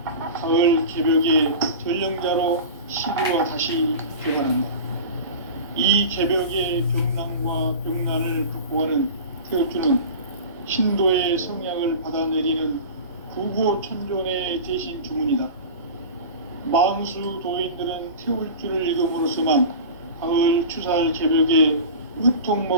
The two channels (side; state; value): both; inverted; correlation -0.32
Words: 가을 개벽의 전령자로 시구가 다시 개발한다. 이 개벽의 병난과 병난을 극복하는 태울주는 신도의 성향을 받아내리는 구고천존의 대신 주문이다. 망수 도인들은 태울주를 읽음으로써만 가을 추살 개벽의